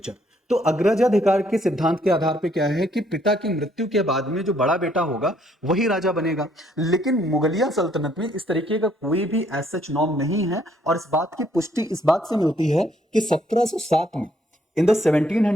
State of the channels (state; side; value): normal; both; correlation 0.68